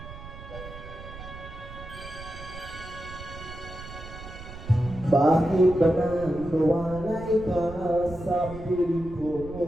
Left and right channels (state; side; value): noise; right; rumble, 13 dB below the sound